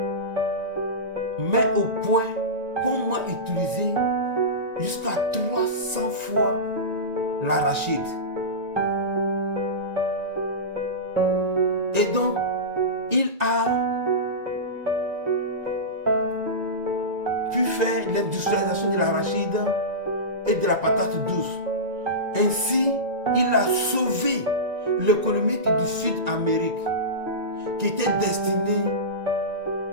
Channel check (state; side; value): late; left; 1.9 ms